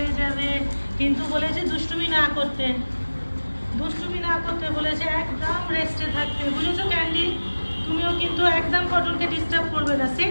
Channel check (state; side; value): inverted; both; correlation -1.00